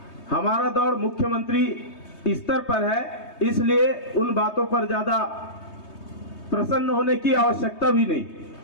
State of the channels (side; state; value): right; late; 3.2 ms